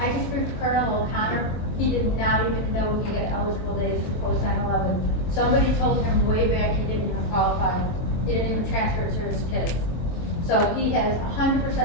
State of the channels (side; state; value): right; late; 23 ms